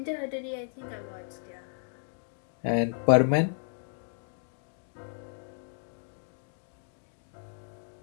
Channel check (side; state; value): right; silent; 56 dB below the other